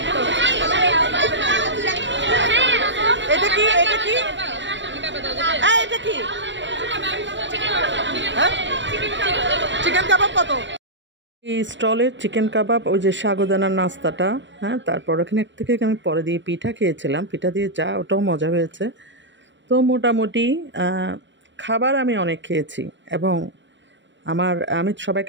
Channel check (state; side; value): late; left; 0.53 ms